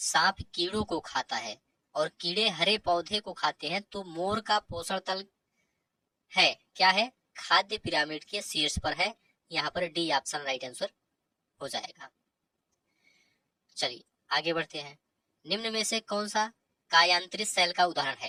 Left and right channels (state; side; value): identical; both; correlation 1.00